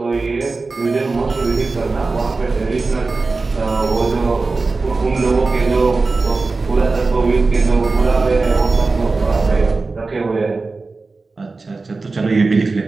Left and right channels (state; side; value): quieter; left; 3.8 dB